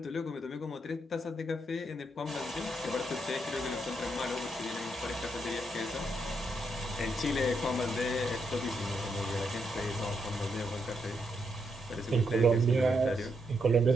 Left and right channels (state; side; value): normal; both; correlation 0.79